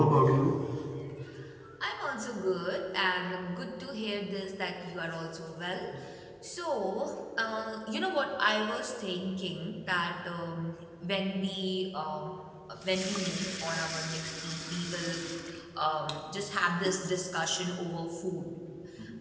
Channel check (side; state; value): both; identical; correlation 1.00